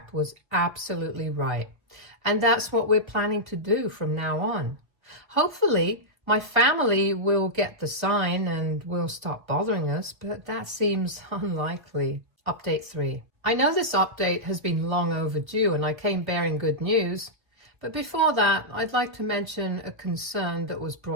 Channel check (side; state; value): left; late; 1.1 ms